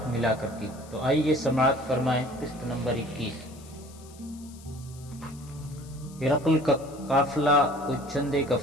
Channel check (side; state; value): left; noise; hiss, 22 dB below the sound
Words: ملا کر کی۔ تو آئیے سماعت فرمائیں قسط نمبر 21۔ ہرقل کا قافلہ کوئی چند ایک